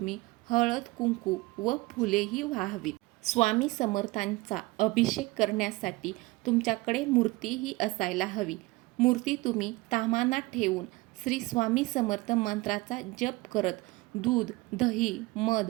हळद, कुंकू व फुलेही वाहावीत. स्वामी समर्थांचा अभिषेक करण्यासाठी तुमच्याकडे मूर्तीही असायला हवी. मूर्ती तुम्ही ताम्हाणात ठेवून श्री स्वामी समर्थ मंत्राचा जप करत दूध, दही,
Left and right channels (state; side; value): quieter; left; 21.7 dB